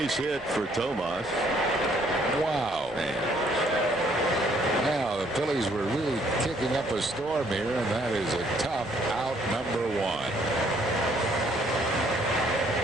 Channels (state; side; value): normal; both; correlation 0.65